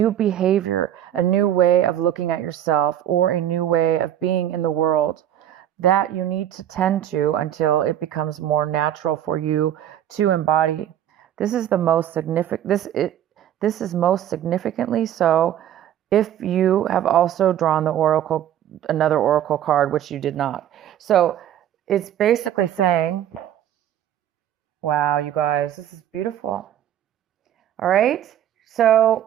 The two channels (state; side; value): quieter; left; 11.0 dB